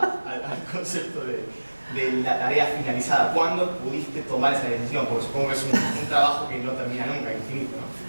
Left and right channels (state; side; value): inverted; both; correlation -1.00